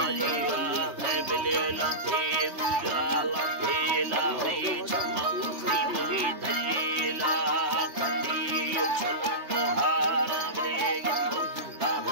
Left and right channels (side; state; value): left; late; 3.1 ms